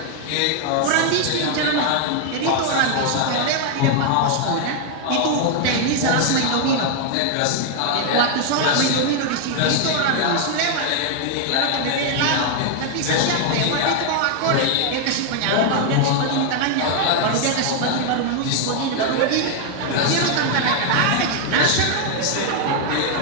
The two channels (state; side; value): different; both; correlation 0.00